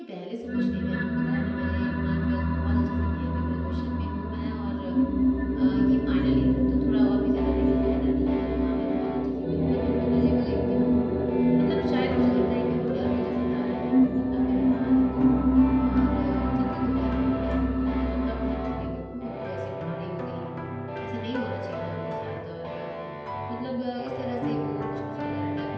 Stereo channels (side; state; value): both; identical; correlation 1.00